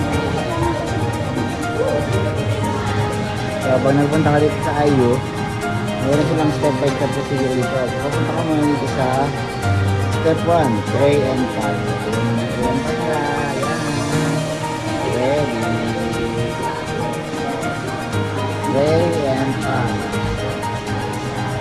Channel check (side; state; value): both; identical; correlation 1.00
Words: So, pag nagpunta ka dito sa IU, meron silang step by step procedure dito. So, papunta ka muna dito sa step 1, tray and pack. Ayan pa sila. Ayan. Ready. Tray and pack.